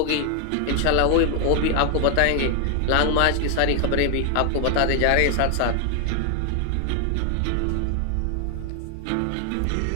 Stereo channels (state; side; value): different; both; correlation 0.00